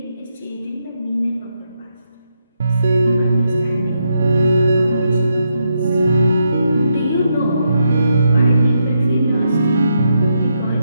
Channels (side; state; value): both; inverted; correlation -0.81